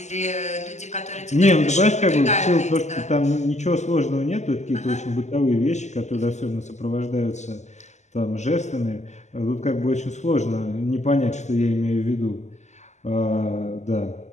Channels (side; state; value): right; late; 0.33 ms